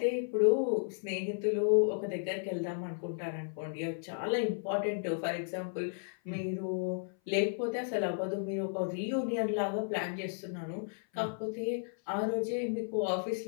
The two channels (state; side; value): silent; right; 55 dB below the other